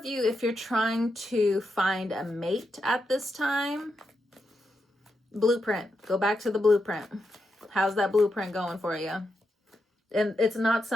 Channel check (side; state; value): both; normal; correlation 0.85